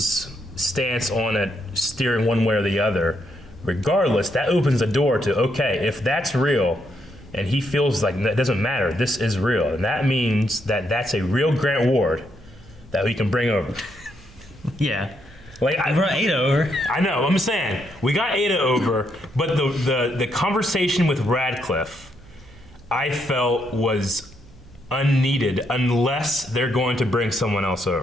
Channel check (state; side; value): noise; right; hum, 23 dB below the sound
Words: stance on it, steering one way or the other. Regardless, that opens the door to, okay, if that's real, and he feels like that doesn't matter, this is real, and that means that that's a real Grant Ward that we can bring over. Yeah. Like, I brought Ada over. I know. I'm saying we got Ada over, but the conversation with Radcliffe, I felt was unneeded unless they're going to bring someone else